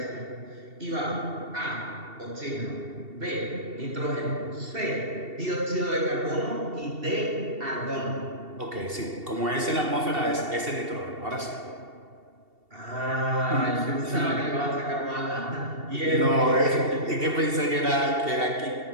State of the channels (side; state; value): left; late; 2.7 ms